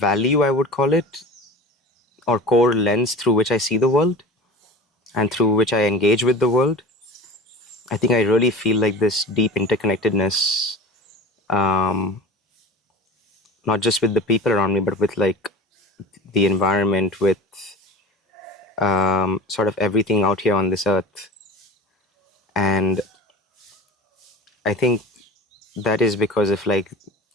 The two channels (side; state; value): both; normal; correlation 0.34